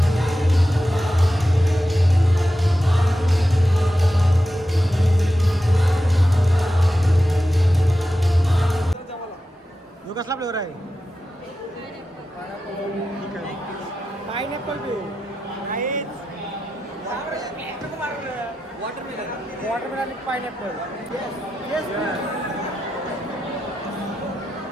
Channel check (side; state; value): both; normal; correlation 0.90